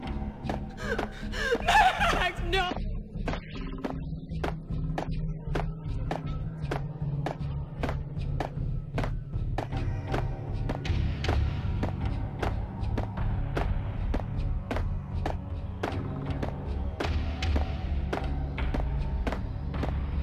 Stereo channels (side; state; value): both; identical; correlation 1.00